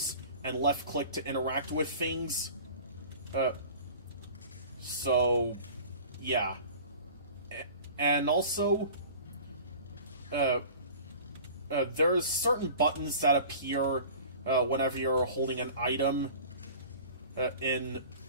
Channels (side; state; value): both; inverted; correlation -0.42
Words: and left-click to interact with things. So, yeah. And also, there's certain buttons that appear whenever you're holding an item in